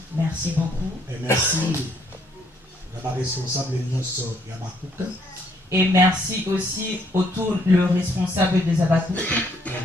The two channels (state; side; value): normal; both; correlation 0.68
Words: Merci beaucoup. Et merci à la responsable Yabakouk. Et merci aussi autour le responsable des Abakouk. Et